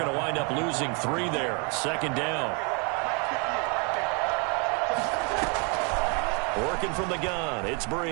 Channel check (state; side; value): quieter; left; 34.6 dB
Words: to wind up losing 3 there. 2nd down. Working from the gun, it's